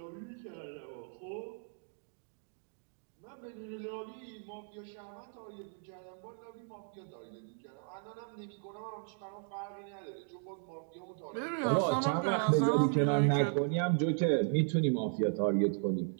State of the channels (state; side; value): silent; left; 54 dB below the other